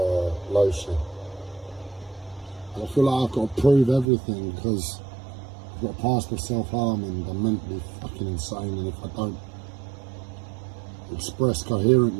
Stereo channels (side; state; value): left; drops out; at 4.0 s